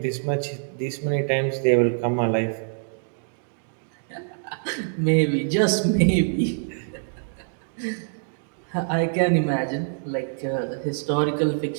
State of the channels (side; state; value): left; silent; digital silence